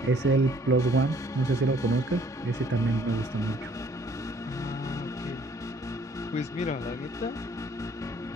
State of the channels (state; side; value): normal; both; correlation 0.60